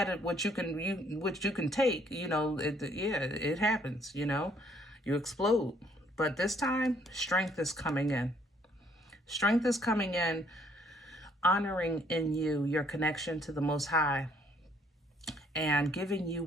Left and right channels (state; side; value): normal; both; correlation 0.65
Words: it, what you can take, you know, it happens, you know, you explode. But this time, strength is coming in. Strength is coming in, honoring in you your connection to the Most High, and giving you